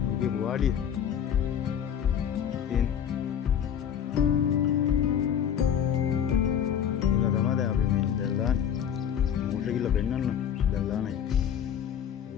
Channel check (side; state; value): right; quieter; 8.9 dB